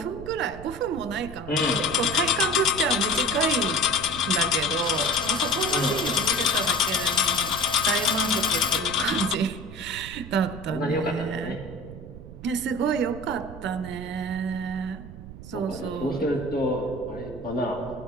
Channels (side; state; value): right; noise; rumble, 13 dB below the sound